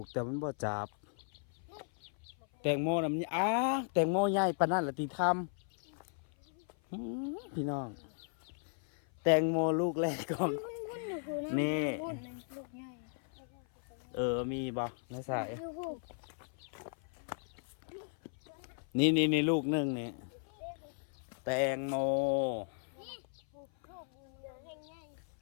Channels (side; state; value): right; silent; 54 dB below the other